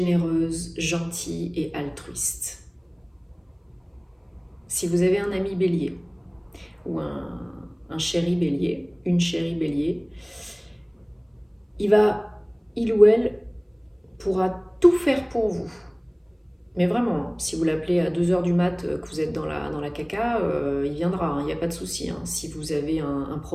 gentilles et altruistes. Si vous avez un ami bélier ou un chéri bélier, une chérie bélier, il ou elle pourra tout faire pour vous. Mais vraiment, si vous l'appelez à 2h du mat, que vous êtes dans la caca, il viendra, il n'y a pas de souci, hein. Si vous avez un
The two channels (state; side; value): identical; both; correlation 1.00